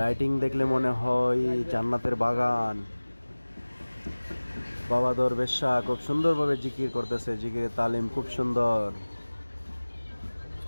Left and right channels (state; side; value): inverted; both; correlation -1.00